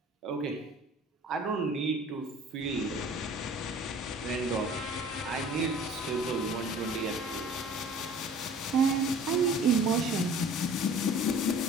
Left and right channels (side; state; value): both; normal; correlation 0.47